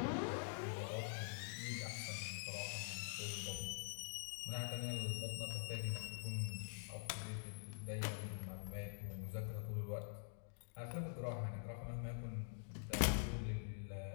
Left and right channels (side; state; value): right; silent; digital silence